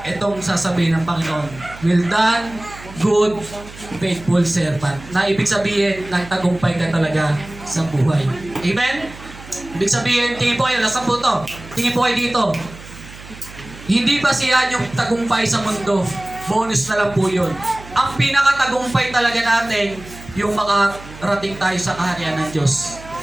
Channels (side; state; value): right; noise; hum, 17 dB below the sound